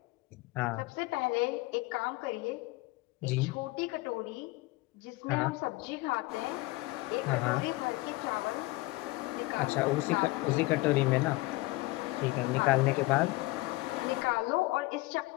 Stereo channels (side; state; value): right; quieter; 21.3 dB